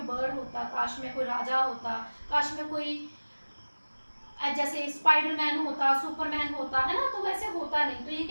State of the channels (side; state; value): both; inverted; correlation -1.00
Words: बर्ड होता, काश मैं कोई राजा होता, काश मैं कोई जैसे स्पाइडरमैन होता, सुपरमैन होता, है ना, तो वैसे होता नहीं, तो ये